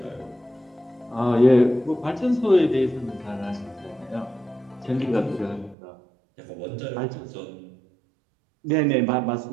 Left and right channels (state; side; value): drops out; left; at 5.8 s